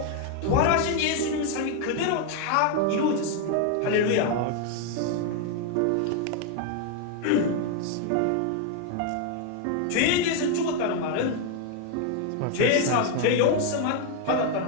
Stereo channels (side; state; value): both; different; correlation 0.01